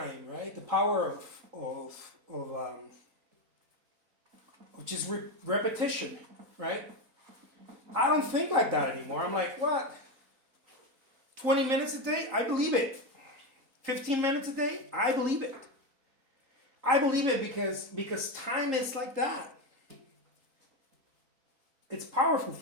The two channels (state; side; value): late; left; 3.8 ms